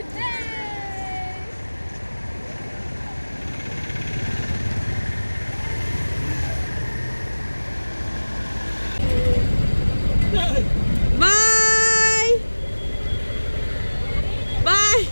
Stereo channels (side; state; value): both; inverted; correlation -1.00